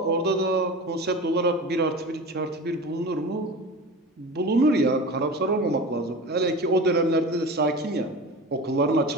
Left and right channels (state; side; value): normal; both; correlation 0.32